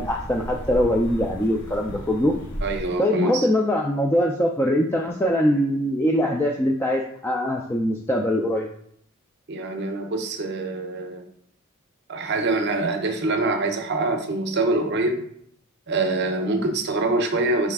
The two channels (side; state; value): both; normal; correlation 0.52